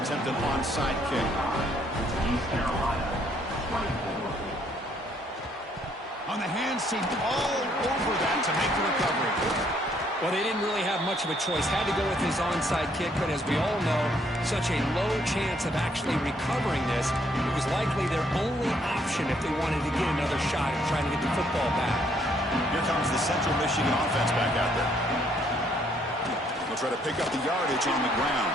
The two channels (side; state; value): both; normal; correlation 0.68